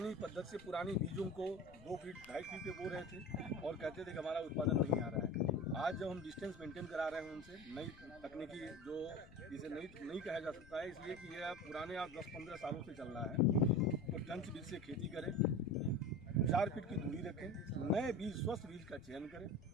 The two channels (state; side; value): noise; left; rumble, 21 dB below the sound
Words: पद्धति से पुरानी बीजों को 2 फीट 2.5 फीट पे बो रहे थे और कहते थे कि हमारा उत्पादन नहीं आ रहा है। आज जब हम डिस्टेंस मेंटेन करा रहे हैं उनसे नई तकनीकी जो इसे नहीं कहा जा सकता है, इसलिए कि यह पुराने आज 10-15 सालों से चल रहा है। तो टंच बीज से खेती करें, 4 फीट की दूरी रखें, नए बीज स्वस्थ बीज का चयन करें।